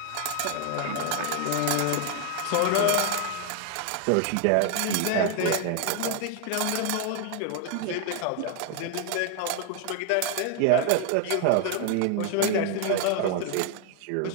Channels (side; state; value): both; different; correlation 0.00